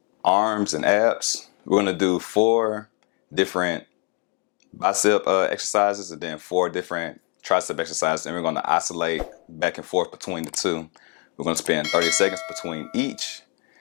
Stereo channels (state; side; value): quieter; right; 31.7 dB